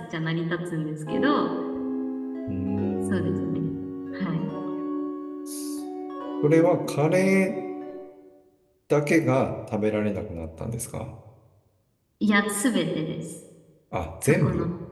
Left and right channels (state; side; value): identical; both; correlation 1.00